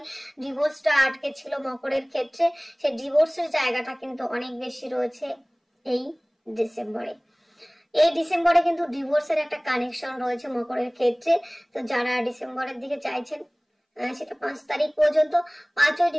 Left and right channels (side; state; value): both; identical; correlation 1.00